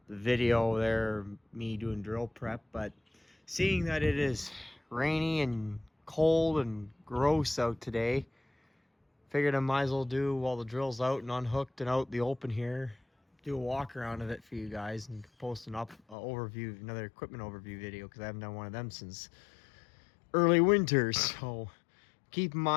video there, me doing drill prep, but seeing that it is rainy and cold and gross out today, figured I might as well do while the drill's out and unhooked and out in the open here, do a walk around of it for you guys and post overview, another equipment overview video, because I haven't done one of them since early winter. So keep in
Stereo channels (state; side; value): drops out; right; at 16.2 s